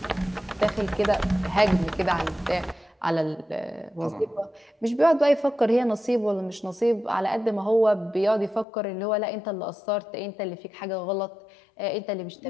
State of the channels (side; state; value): right; drops out; at 8.7 s